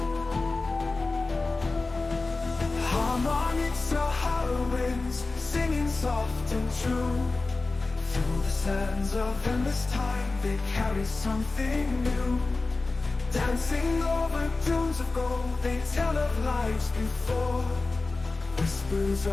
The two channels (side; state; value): right; quieter; 3.5 dB